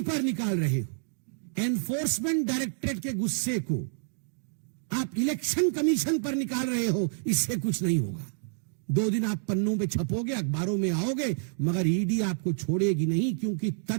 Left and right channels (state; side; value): silent; left; digital silence